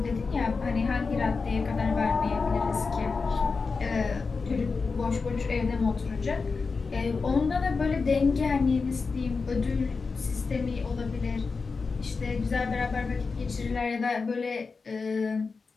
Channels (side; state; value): right; quieter; 4.6 dB